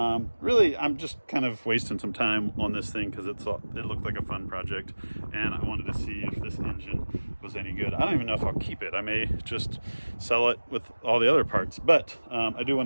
Really, I'm just kind of wasting some time on this thing because it looked like a fun project, and I wanted to see if this engine was any good. I don't even know if I'll keep it. I may just sell it with all the other parts, but I do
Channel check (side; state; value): both; inverted; correlation -1.00